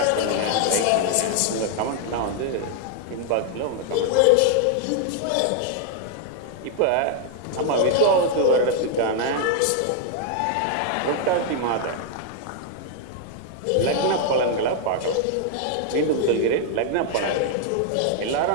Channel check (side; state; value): both; different; correlation 0.00